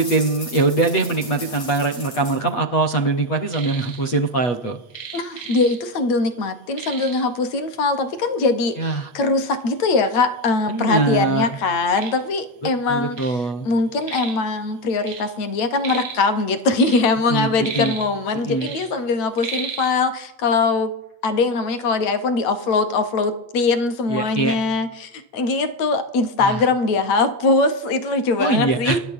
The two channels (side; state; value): right; late; 8.3 ms